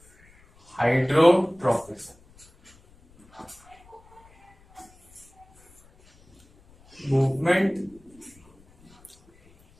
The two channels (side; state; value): left; noise; rumble, 29 dB below the sound